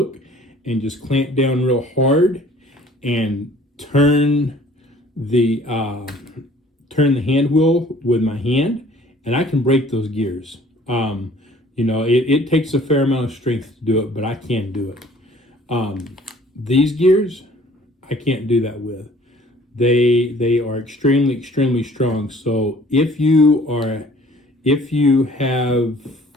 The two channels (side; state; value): both; normal; correlation 0.54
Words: and just clamp down real hard, and turn the hand wheel with my hand, and I can break those gears. You know, it takes a fair amount of strength to do it, but I can do it. These gears, I can't do that with. They are extremely strong. So if you